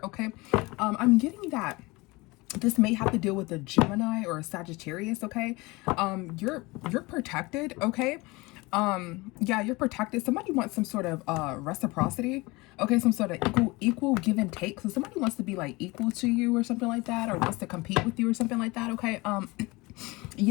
Okay, I'm getting that this may have to deal with a Gemini or a Sagittarius. Okay, you're protected. Okay. Yeah, you're protected. Somebody wants some sort of reciprocity. Okay, some sort of equal give and take. So somebody wants to be like equal to you or something like that, or wants to compete with you or something like that. Okay.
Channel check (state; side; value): quieter; right; 23.4 dB